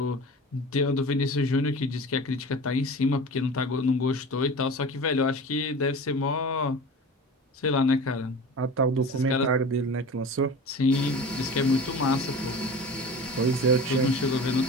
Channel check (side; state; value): both; normal; correlation 0.36